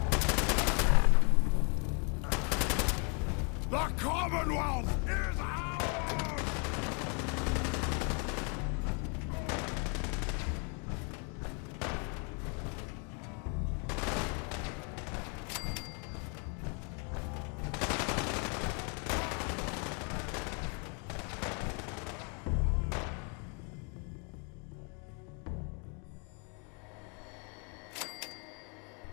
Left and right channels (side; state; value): right; quieter; 36.9 dB